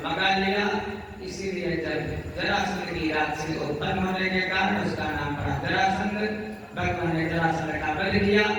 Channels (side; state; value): both; identical; correlation 1.00